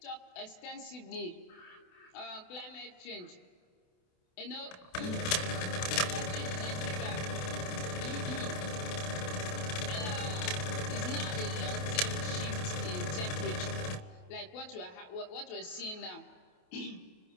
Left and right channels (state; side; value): late; right; 28 ms